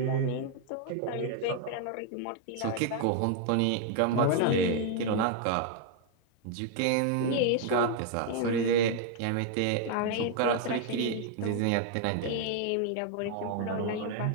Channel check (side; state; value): both; different; correlation 0.00